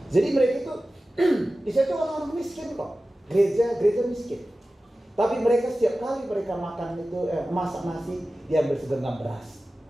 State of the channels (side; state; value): both; normal; correlation 0.95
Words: Jadi mereka itu di situ orang-orang miskin kok. Gereja miskin. Tapi mereka setiap kali mereka makan itu masak nasi, diambil segenggam beras,